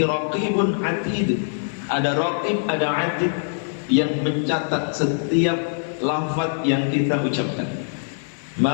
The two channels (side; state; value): right; silent; 63 dB below the other